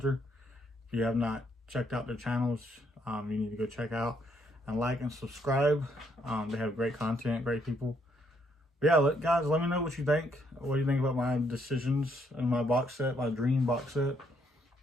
If you have not checked out their channels, you need to go check out and like and subscribe. They have great content, great people. But yeah, guys, let me know what you think. What do you think about my decisions and my box set, my dream box set?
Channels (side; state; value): both; normal; correlation 0.72